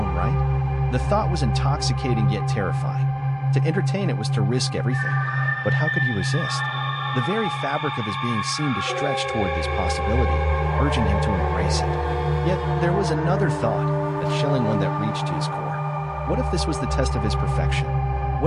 right? The thought was intoxicating yet terrifying. To entertain it was to risk everything. But how could he resist? The very fabric of his being seemed to stretch toward this possibility, urging him to embrace it. Yet there was another thought, a chilling one that reached to his core. What if this was the test of his perfection?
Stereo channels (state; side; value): identical; both; correlation 1.00